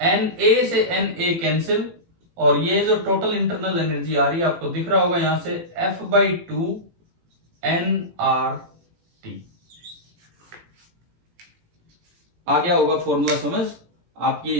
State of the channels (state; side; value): late; left; 18 ms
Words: से Na कैंसिल, और ये जो टोटल इंटरनल एनर्जी आ रही है आपको दिख रहा होगा यहां से F/2 nRT। आ गया होगा फॉर्मूला समझ? आप ये